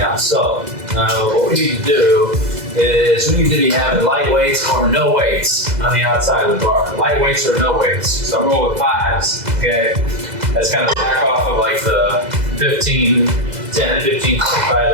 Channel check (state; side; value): late; left; 2.0 ms